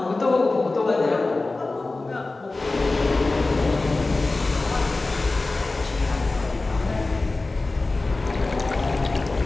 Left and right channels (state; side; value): quieter; right; 3.3 dB